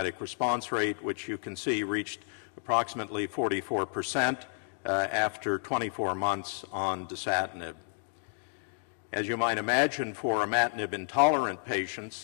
response rate, which you can see reached approximately 44% after 24 months on dasatinib. As you might imagine, for imatinib-intolerant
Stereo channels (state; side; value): silent; right; 57 dB below the other